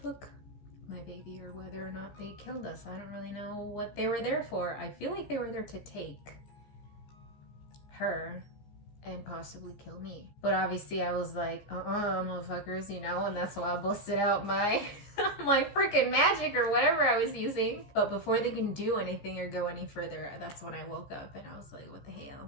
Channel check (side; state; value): right; late; 15 ms